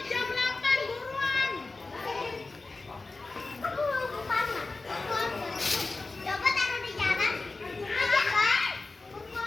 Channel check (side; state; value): right; quieter; 3.5 dB